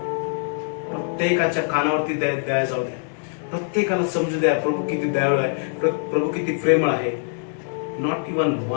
प्रत्येकाच्या कानावरती दया जाऊ द्या. प्रत्येकाला समजू द्या प्रभू किती दयाळू आहे, प्रभू किती प्रेमळ आहे. Not even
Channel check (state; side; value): silent; right; 63 dB below the other